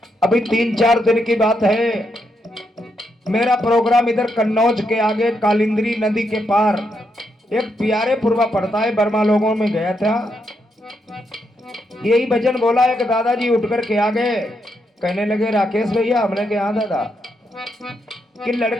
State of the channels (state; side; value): normal; both; correlation 0.80